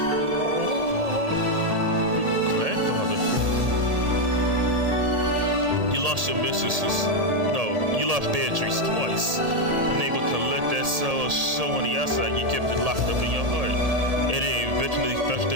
grandfather. You lost your mistresses. No, you lost Beatrice twice. Unable to let that sorrow show on the outside, you kept it locked up in your heart. And it eventually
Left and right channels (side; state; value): left; late; 1.8 ms